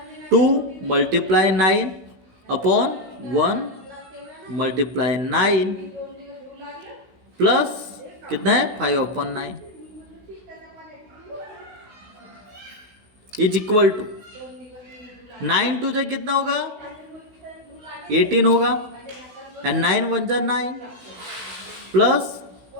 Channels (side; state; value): left; late; 16 ms